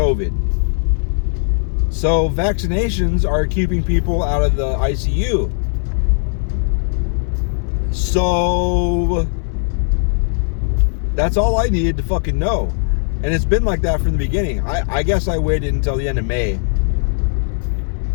So vaccinations are keeping people out of the ICU. So that's all I needed to fucking know. And it's been like that from the beginning. I guess I waited until the end of May.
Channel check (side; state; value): right; silent; 67 dB below the other